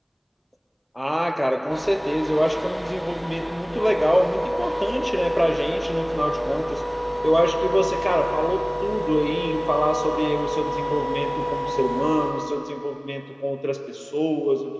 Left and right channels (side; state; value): both; identical; correlation 1.00